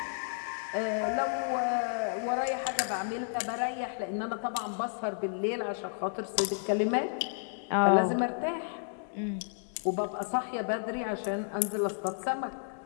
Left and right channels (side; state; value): right; silent; digital silence